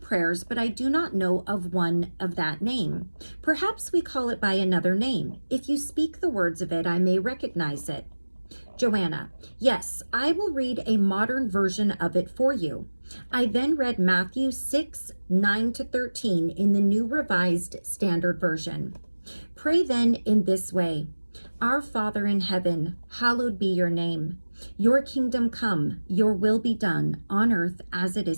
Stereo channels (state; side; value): inverted; both; correlation -1.00